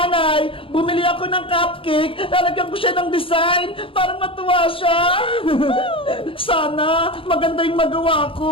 Bumili ako ng cupcake, lalagyan ko siya ng design para matuwa siya. Sana maganda yung magawa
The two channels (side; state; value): right; late; 0.26 ms